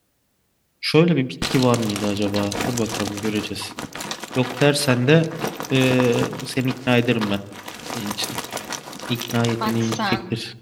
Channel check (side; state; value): both; identical; correlation 1.00